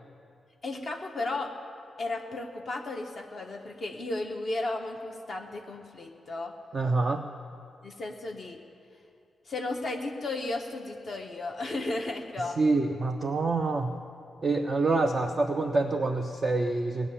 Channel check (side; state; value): both; normal; correlation 0.86